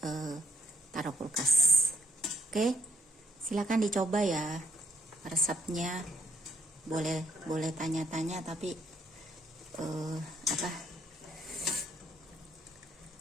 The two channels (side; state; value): both; normal; correlation 0.70